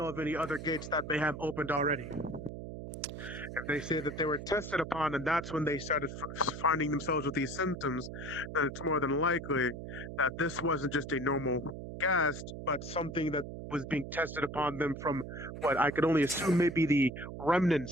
of any other gates that they have opened already. If they say that they were tested upon and that's when they started finding themselves with these symptoms, then it's more than likely that this wasn't just a normal gas, but something that was being tested upon them from what I could only assume may be the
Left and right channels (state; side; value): noise; right; hum, 9 dB below the sound